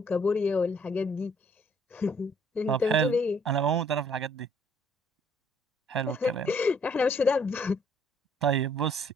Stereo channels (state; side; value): normal; both; correlation 0.63